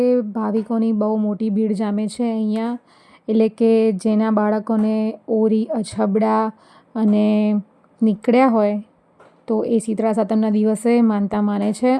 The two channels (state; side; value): identical; both; correlation 1.00